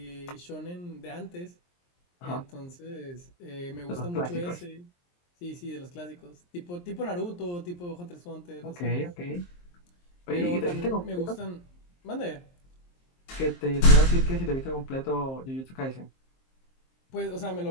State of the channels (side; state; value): right; late; 23 ms